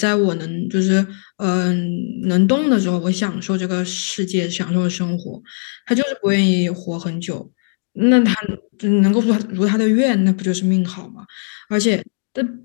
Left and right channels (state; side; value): silent; right; 60 dB below the other